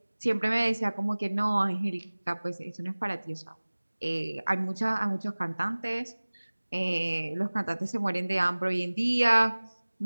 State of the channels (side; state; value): both; inverted; correlation -1.00